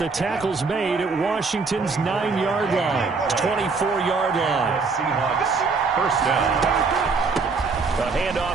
tackle's made at Washington's 9-yard line. 24-yard line. Seahawks first down. A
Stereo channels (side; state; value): left; quieter; 4.5 dB